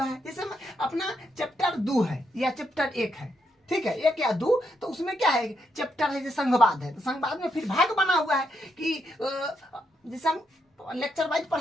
है। जैसे अपना चैप्टर 2 है या चैप्टर 1 है, ठीक है, 1 या 2, तो उसमें क्या है, चैप्टर है जैसे संघवाद है, तो संघवाद में फिर भाग बना हुआ है कि जैसे हम लेक्चर वाइज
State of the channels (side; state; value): both; normal; correlation 0.79